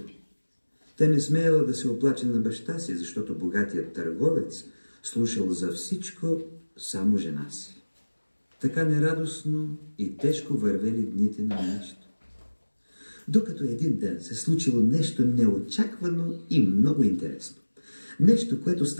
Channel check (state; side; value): inverted; both; correlation -1.00